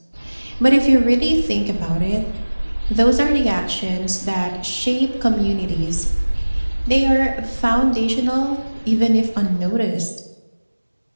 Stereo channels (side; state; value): both; inverted; correlation -1.00